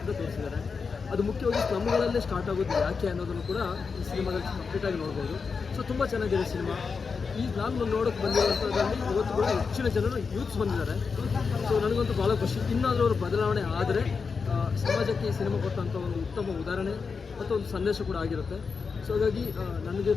ತೋರಿಸಿದ್ದಾರೆ. ಅದು ಮುಖ್ಯವಾಗಿ ಸ್ಲಮ್ಗಳಲ್ಲೇ ಸ್ಟಾರ್ಟ್ ಆಗೋದು ಯಾಕೆ ಅನ್ನೋದನ್ನು ಕೂಡ ಈ ಸಿನಿಮಾದಲ್ಲಿ ಕಂಪ್ಲೀಟಾಗಿ ನೋಡ್ಬೋದು. ಸೊ ತುಂಬ ಚೆನ್ನಾಗಿದೆ ಸಿನಿಮಾ. ನಾನು ನೋಡೋಕ್ಕೆ ಬಂದಿರುವಂಥದ್ರಲ್ಲಿ ಇವತ್ತು ಕೂಡ ಹೆಚ್ಚಿನ ಜನರು ಯೂತ್ಸ್ ಬಂದಿದ್ದಾರೆ. ಸೊ ನನಗಂತೂ ಭಾಳ ಖುಷಿ. ಇನ್ನಾದರೂ ಅವರು ಬದಲಾವಣೆ ಆದರೆ ಸಮಾಜಕ್ಕೆ ಈ ಸಿನಿಮಾ ಕೊಟ್ಟಂಥ ಒಂದು ಉತ್ತಮ ಉದಾಹರಣೆ ಮತ್ತು ಒಂದು ಸಂದೇಶ ಕೂಡ ಆಗಿರುತ್ತೆ. ಸೊ ಹಾಗಾಗಿ ನನಗೆ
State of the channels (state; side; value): quieter; right; 5.2 dB